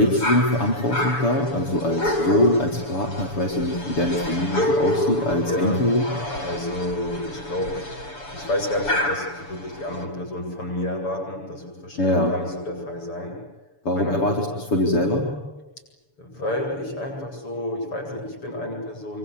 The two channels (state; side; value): late; right; 7.0 ms